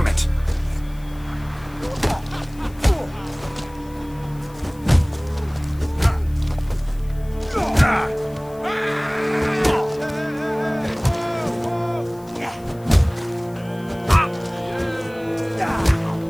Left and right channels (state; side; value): noise; left; hiss, 25 dB below the sound